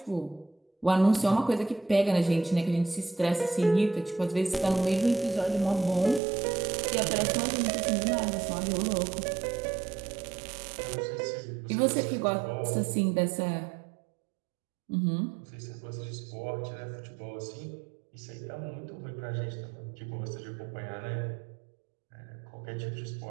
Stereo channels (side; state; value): left; drops out; at 6.2 s